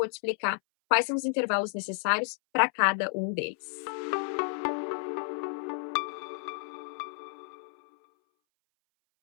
te explicar quais são os intervalos necessários para cada um deles.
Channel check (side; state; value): right; silent; 57 dB below the other